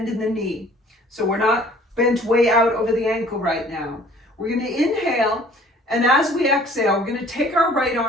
in the knee. So we're not bent way out over the ankle right now. We're going to inhale, and as we exhale, we're going to take our right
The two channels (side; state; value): both; normal; correlation 0.53